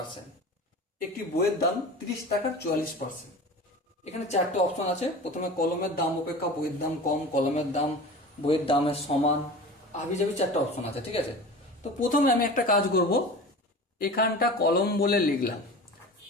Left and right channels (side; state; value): both; normal; correlation 0.35